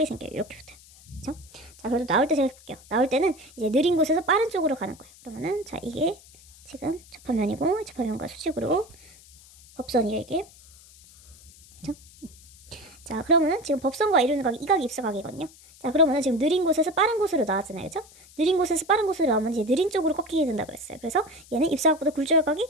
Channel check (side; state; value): left; noise; hiss, 23 dB below the sound